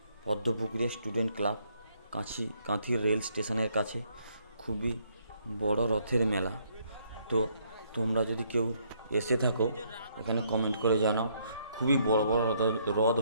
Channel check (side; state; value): both; inverted; correlation -0.69